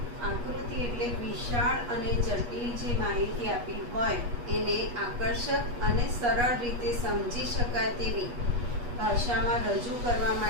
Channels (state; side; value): late; left; 8.3 ms